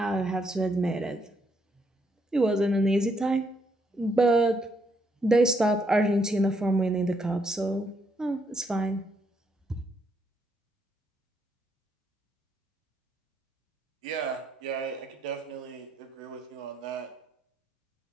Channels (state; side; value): normal; both; correlation 0.75